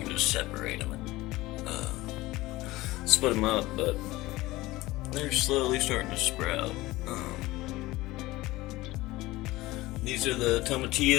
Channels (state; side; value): quieter; right; 19.0 dB